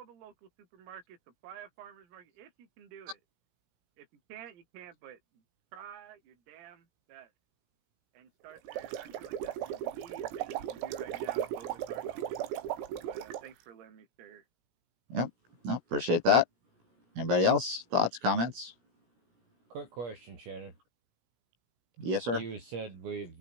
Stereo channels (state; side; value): late; left; 17 ms